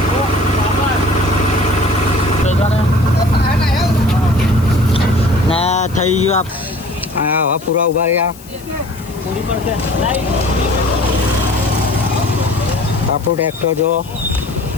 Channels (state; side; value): noise; left; hiss, 21 dB below the sound